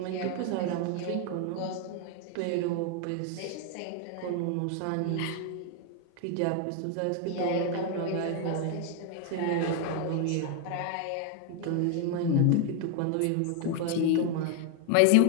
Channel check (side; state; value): both; different; correlation 0.00